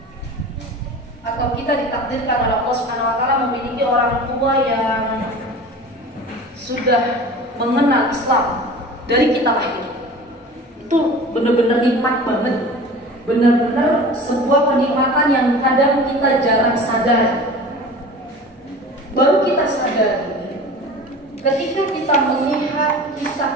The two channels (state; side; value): normal; both; correlation 0.38